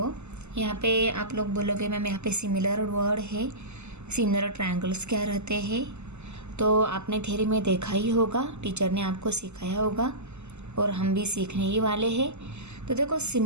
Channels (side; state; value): left; late; 0.82 ms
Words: यहाँ पे आप लोग बोलोगे ma'am यहाँ पे similar word है, similar triangles क्या रहते हैं। तो आपने थ्योरी में देखा ही होगा, टीचर ने आपको सिखाया होगा और हम भी सीखने ही वाले हैं। तो देखो